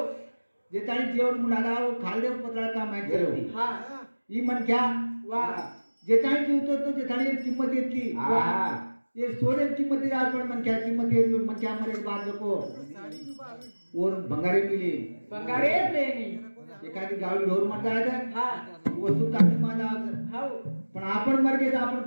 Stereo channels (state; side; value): inverted; both; correlation -1.00